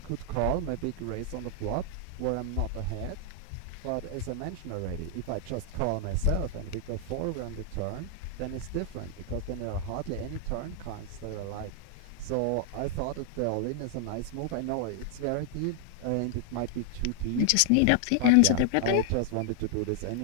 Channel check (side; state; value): both; different; correlation 0.00